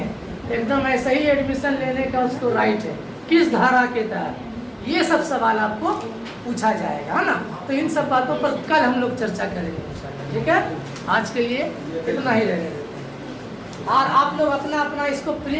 एकदम ऐसे ही एडमिशन लेने का उसको राइट है। किस धारा के तहत, ये सब सवाल आपको पूछा जाएगा, है ना। तो इन सब बातों पर कल हम लोग चर्चा करेंगे, ठीक है। आज के लिए इतना ही रहने देते हैं। और आप लोग अपना अपना इसको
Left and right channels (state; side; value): identical; both; correlation 1.00